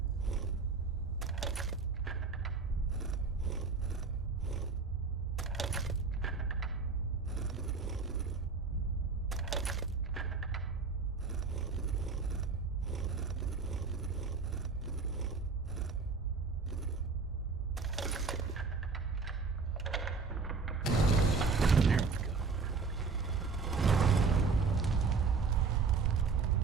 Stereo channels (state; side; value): quieter; left; 4.6 dB